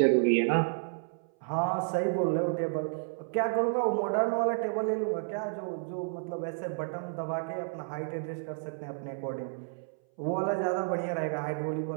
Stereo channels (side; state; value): left; silent; 57 dB below the other